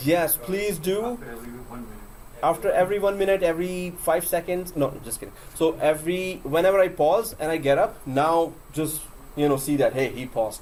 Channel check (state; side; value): identical; both; correlation 1.00